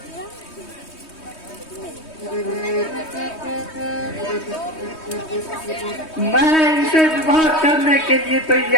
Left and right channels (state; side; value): late; right; 3.2 ms